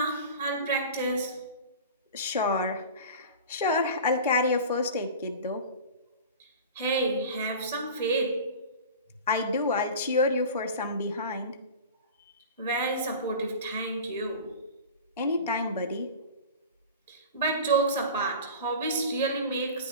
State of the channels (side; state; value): both; inverted; correlation -0.35